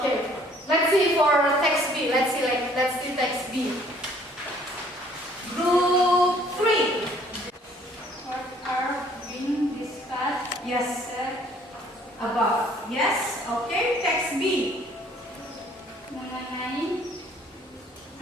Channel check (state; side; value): normal; both; correlation 0.59